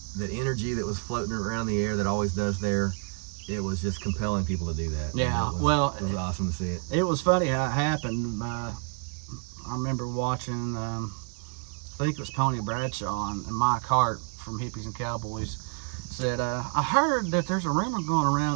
energy that was floating around the air that always does there. It was just compelling people to do that. Yeah, it was awesome to see it. It was funny how it happened. I remember watching, I think it was Pony Bradshaw and Mike Hart from Hippies and Cowboys said, I heard that there's a rumor going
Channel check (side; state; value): left; quieter; 39.8 dB